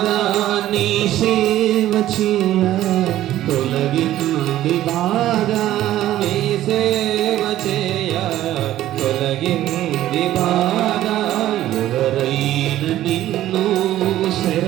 నీ సేవ చేయ తొలగింది బాధ నీ సేవ చేయ తొలగింది బాధ ఎవరైనా నిన్ను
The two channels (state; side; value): quieter; left; 13.6 dB